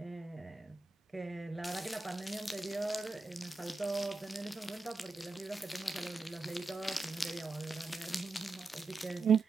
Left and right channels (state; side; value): quieter; left; 3.6 dB